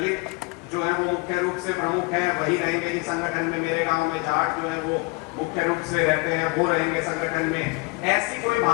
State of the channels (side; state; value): right; quieter; 27.0 dB